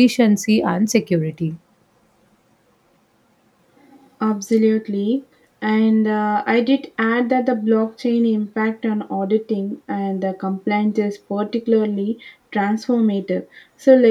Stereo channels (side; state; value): both; identical; correlation 1.00